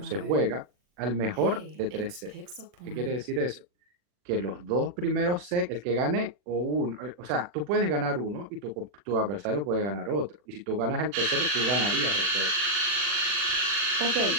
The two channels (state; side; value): late; left; 40 ms